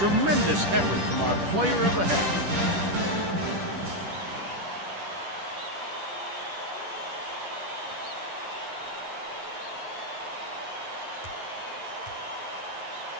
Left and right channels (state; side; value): late; left; 10 ms